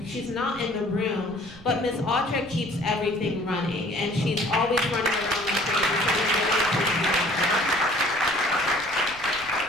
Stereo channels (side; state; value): right; noise; rumble, 21 dB below the sound